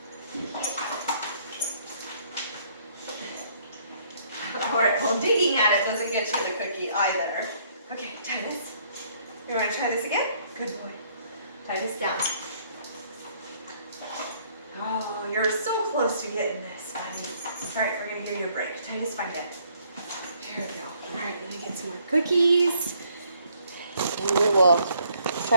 All right, well, digging at it doesn't get you the cookie either. Okay, Titus. You want to try this again? Good boy. Titus, down. Oh, you're so close to getting this, buddy. All right, we're going to give you a break. Titus, find it. Here we go. All right, let me get some more cookies. And we will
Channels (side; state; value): both; inverted; correlation -0.65